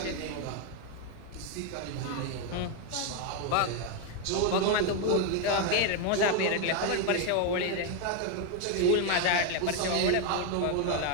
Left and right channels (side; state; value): both; different; correlation 0.01